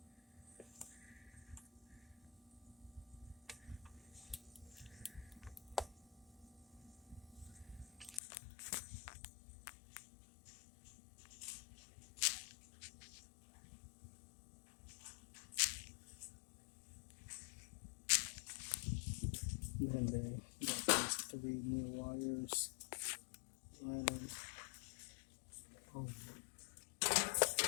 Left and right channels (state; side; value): drops out; right; at 8.2 s